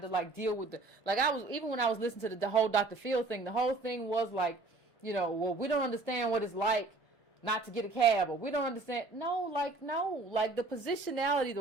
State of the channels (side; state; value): left; quieter; 3.4 dB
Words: of like deal with even when I was listening to the whole Dr. Phil thing, the whole thing was like, well, we don't understand what it's like not to get a cab, or we don't understand. No, the positionality,